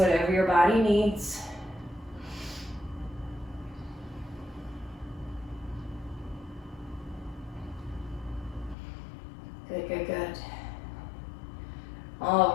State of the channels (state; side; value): drops out; right; at 8.8 s